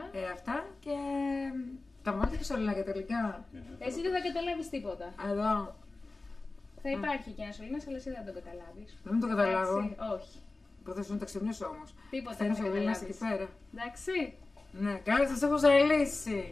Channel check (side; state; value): right; quieter; 3.4 dB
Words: Αυτά και. Τα βάλτε και σωλήνα και τελικά. Εσύ δεν θα καταλάβεις τίποτα. Εδώ. Θα υπάρχει και ένα σωλήνας, αλλά εσύ δεν θα τον καταλάβεις. Δεν το καταλάβω. Εντάξει, όχι. Που θα σου να τα ξυπνήσω όμως. Τίποτα Θέλω δεν θα σωλήνα καταλάβεις. εκεί πέρα. Εντάξει. Ναι, καλά, σας έχω ζαλίσει.